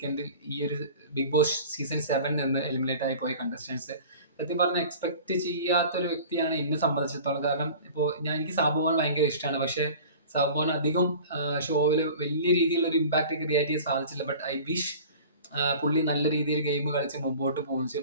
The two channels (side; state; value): both; inverted; correlation -0.42